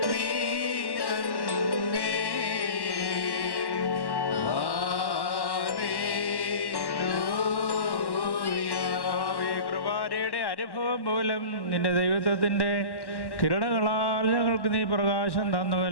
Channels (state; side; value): late; right; 1.1 ms